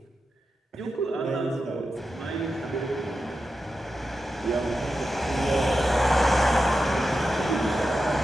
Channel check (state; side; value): normal; both; correlation 0.90